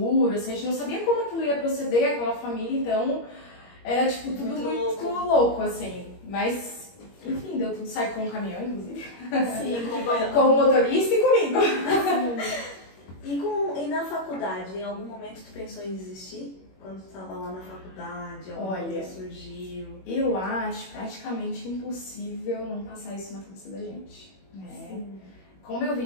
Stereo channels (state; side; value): late; right; 21 ms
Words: assim, a gente não sabia como aquilo ia proceder, aquela família, então era, tipo, tudo muito louco, assim, mas, enfim, deu tudo certo com o caminhão, inclusive. Sim, com o motorista e comigo. E na faculdade, em algum momento tu pensou em desistir? quando estava lá na faculdade? Olha, coisa surgiu? Eu acho praticamente impossível não passar isso na cabeça da gente, né? Sim. Como eu